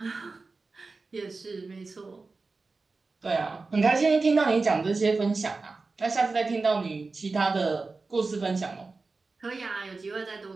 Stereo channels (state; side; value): quieter; left; 3.9 dB